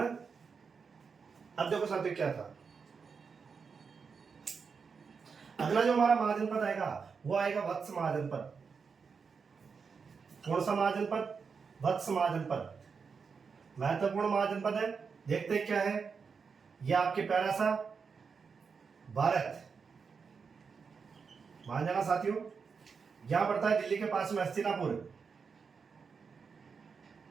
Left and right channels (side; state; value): left; quieter; 5.6 dB